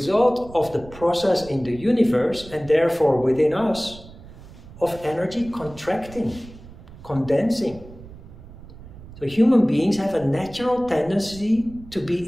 of the process in the universe and therefore within us of energy contracting, condensing. So human beings have a natural tendency to be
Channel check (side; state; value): right; noise; rumble, 18 dB below the sound